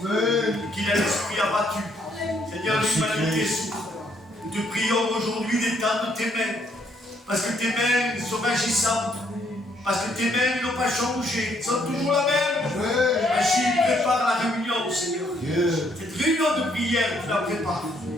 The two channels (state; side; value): normal; both; correlation 0.70